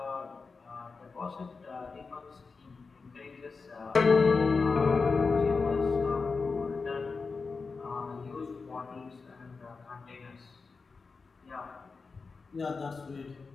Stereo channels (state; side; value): quieter; right; 4.5 dB